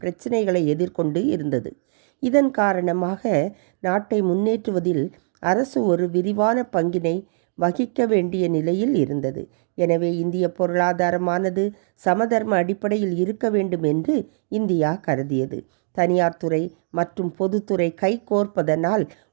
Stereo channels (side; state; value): left; silent; digital silence